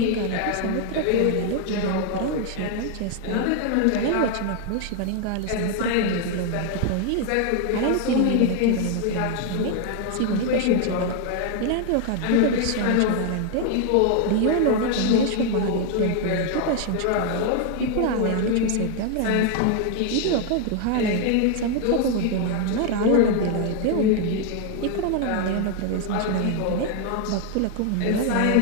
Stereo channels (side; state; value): both; different; correlation 0.01